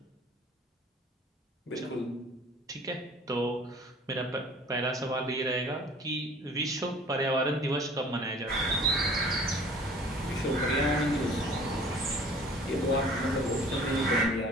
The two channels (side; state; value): both; normal; correlation 0.49